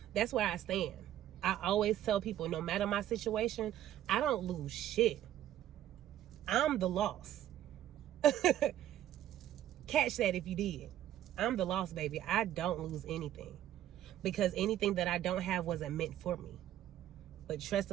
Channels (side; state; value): left; quieter; 12.3 dB